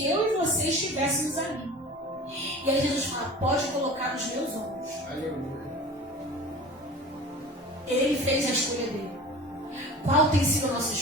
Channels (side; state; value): both; normal; correlation 0.38